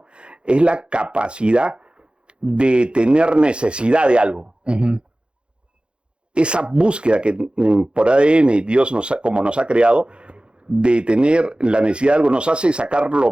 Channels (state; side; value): late; left; 0.055 ms